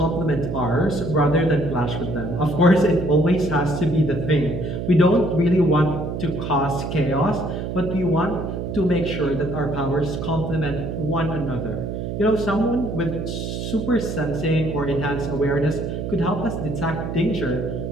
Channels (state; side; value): noise; right; hum, 4 dB below the sound